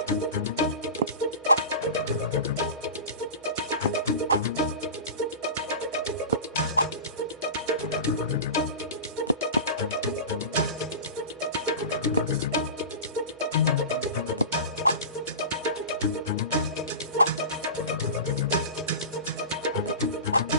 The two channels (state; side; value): inverted; both; correlation -0.30